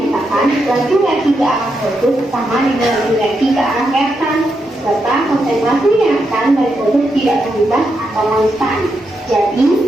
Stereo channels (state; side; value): normal; both; correlation 0.83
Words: laju reaksi ke arah produk sama dengan laju reaksi ke arah reaktan, serta konsentrasi reaktan dari produk tidak berubah atau konstan.